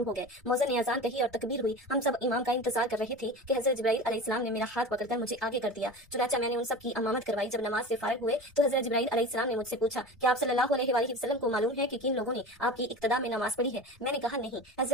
हो गए। मौज़न ने अजान कही और तकबीर हुई। हम सब इमाम का इंतजार कर रहे थे कि हज़रत जिब्राइल अलैहिस्सलाम ने मेरा हाथ पकड़कर मुझे आगे कर दिया। चुनाचा मैंने उन सब की इमामत करवाई। जब नमाज से फारिग हुए तो हज़रत जिब्राइल अलैहिस्सलाम ने मुझसे पूछा कि आप सल्लल्लाहु अलैहि वसल्लम को मालूम है कि किन लोगों ने आपकी इक्तदा में नमाज पढ़ी है? मैंने कहा, नहीं।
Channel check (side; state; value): both; normal; correlation 0.32